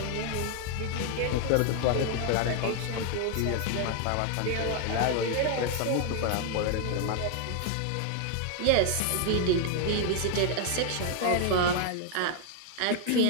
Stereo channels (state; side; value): different; both; correlation 0.00